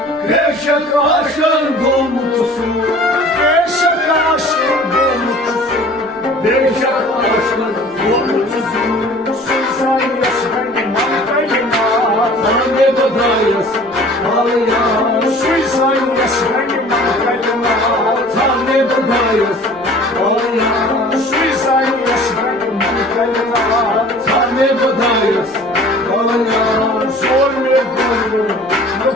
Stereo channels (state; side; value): noise; right; rumble, 29 dB below the sound